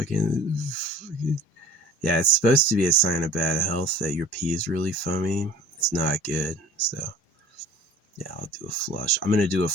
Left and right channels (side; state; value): both; normal; correlation 0.45